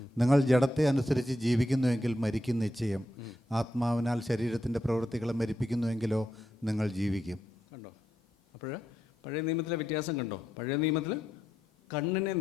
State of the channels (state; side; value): normal; both; correlation 0.82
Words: നിങ്ങൾ ജഡത്തെ അനുസരിച്ച് ജീവിക്കുന്നുവെങ്കിൽ മരിക്കും നിശ്ചയം. ആത്മാവിനാൽ ശരീരത്തിൻ്റെ പ്രവൃത്തികളെ മരിപ്പിക്കുന്നുവെങ്കിലോ നിങ്ങൾ ജീവിക്കും. കണ്ടോ? അപ്പോൾ പഴയ നിയമത്തിലെ വ്യത്യാസം കണ്ടോ? പഴയ നിയമത്തിൽ കണ്ണിനെ